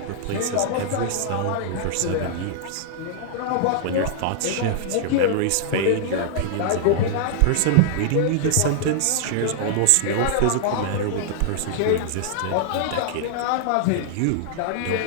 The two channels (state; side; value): different; both; correlation -0.01